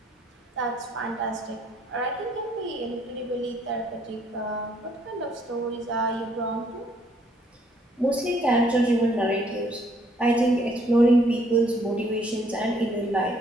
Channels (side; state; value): both; normal; correlation 0.66